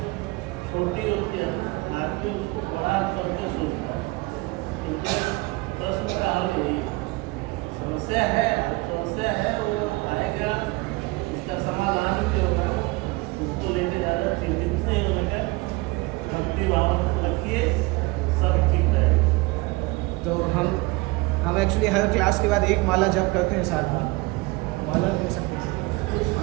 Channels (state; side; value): quieter; left; 23.6 dB